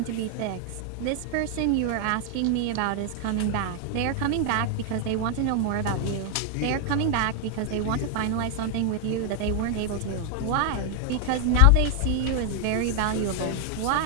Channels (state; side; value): different; both; correlation 0.00